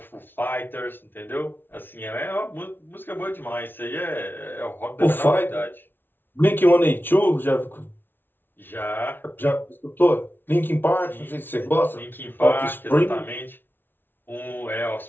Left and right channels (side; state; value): right; late; 0.10 ms